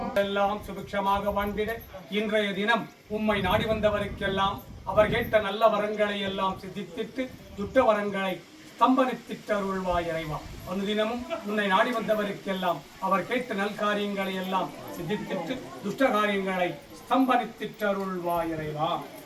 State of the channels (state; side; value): identical; both; correlation 1.00